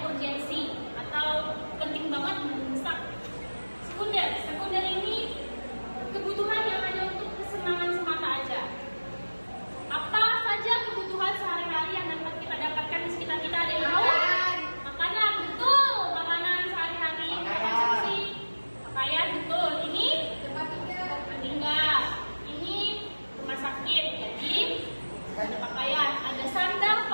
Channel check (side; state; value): both; inverted; correlation -1.00